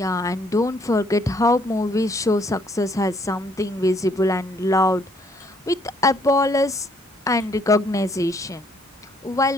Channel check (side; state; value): both; normal; correlation 0.67